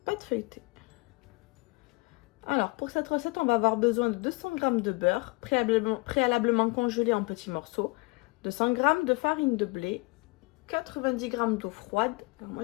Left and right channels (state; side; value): quieter; right; 26.9 dB